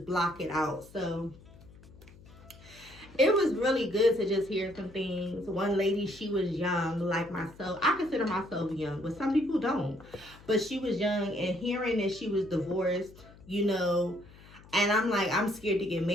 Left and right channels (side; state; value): left; noise; hum, 22 dB below the sound